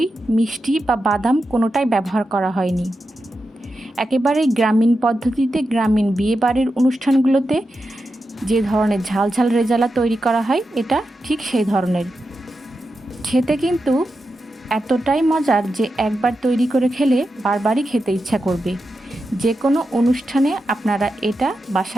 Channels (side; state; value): both; normal; correlation 0.89